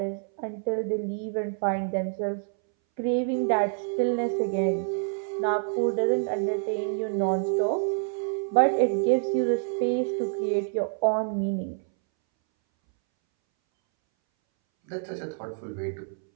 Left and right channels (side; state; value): left; silent; 60 dB below the other